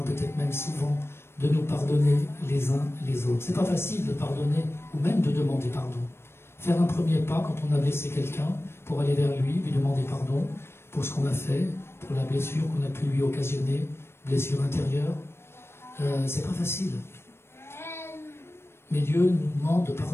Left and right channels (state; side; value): late; right; 0.12 ms